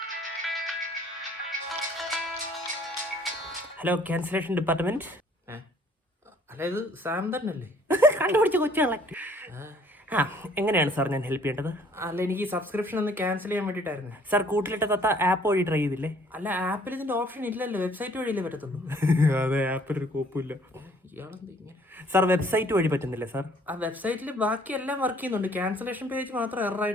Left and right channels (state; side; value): normal; both; correlation 0.59